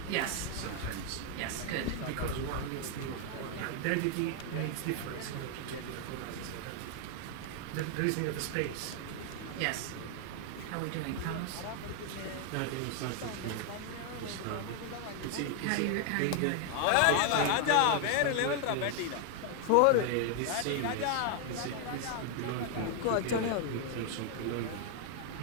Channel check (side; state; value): both; different; correlation 0.00